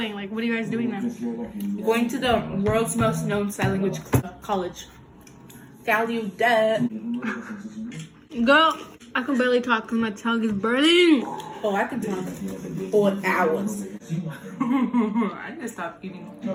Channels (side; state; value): both; identical; correlation 1.00